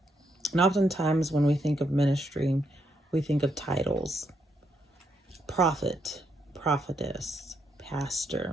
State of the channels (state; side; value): normal; both; correlation 0.77